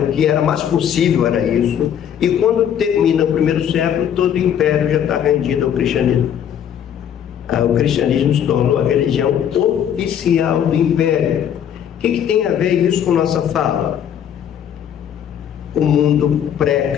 que era mais possível, era isso. E quando termina o primeiro século, todo o império já está rendido ao cristianismo. O cristianismo se tornou a religião oficial do império. O que tem a ver isso com nossa fala? O mundo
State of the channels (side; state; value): right; quieter; 9.2 dB